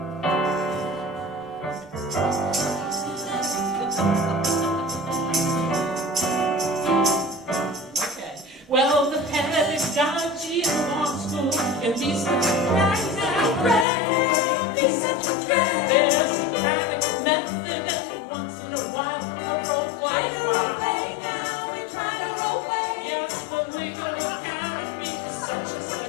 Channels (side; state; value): right; drops out; at 13.9 s